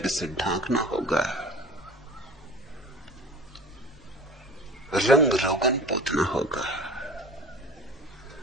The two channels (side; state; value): both; normal; correlation 0.40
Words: से ढांकना होगा, रंग रोगन पोतना होगा,